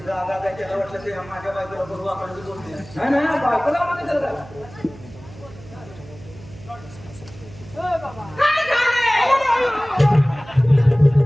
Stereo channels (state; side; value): noise; right; hum, 19 dB below the sound